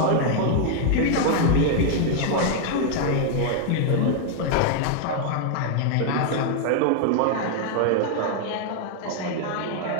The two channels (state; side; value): different; both; correlation 0.00